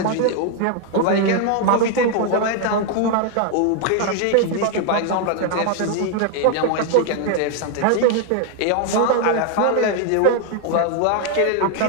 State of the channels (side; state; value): both; different; correlation 0.01